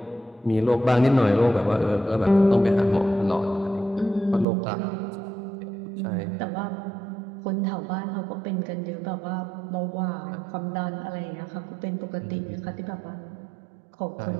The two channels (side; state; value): left; drops out; at 4.5 s